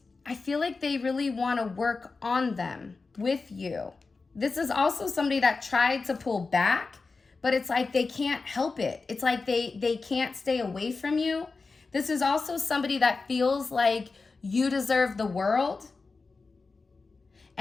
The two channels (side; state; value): right; quieter; 4.1 dB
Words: I feel like they really want to work on them with you. This is also somebody that tried to pull back, but it's like they can't help it. It's like they can't stay away from you. This is also somebody that feels like you deserve the world